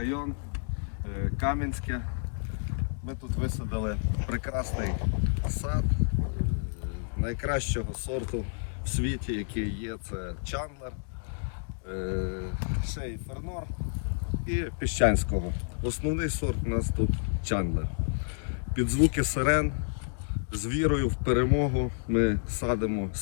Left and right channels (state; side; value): silent; right; digital silence